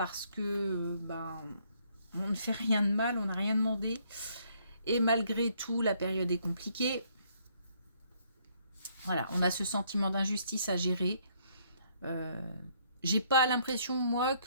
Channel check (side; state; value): both; inverted; correlation -0.67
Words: que on ne fait rien de mal, on n'a rien demandé. Et malgré tout, la période est compliquée. Voilà, on a ce sentiment d'injustice à gérer. J'ai pas l'impression, moi,